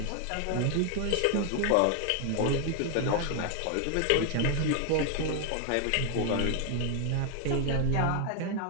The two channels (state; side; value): different; both; correlation 0.01